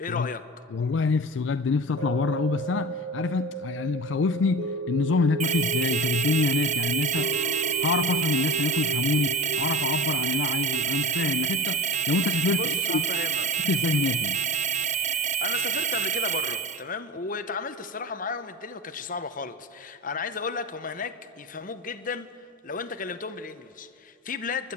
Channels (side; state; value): both; normal; correlation 0.26